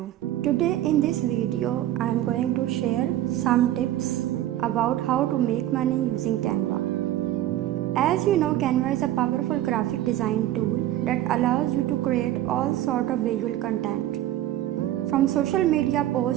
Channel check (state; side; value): quieter; left; 13.5 dB